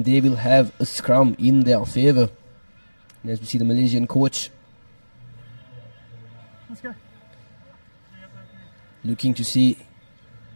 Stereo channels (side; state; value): both; inverted; correlation -1.00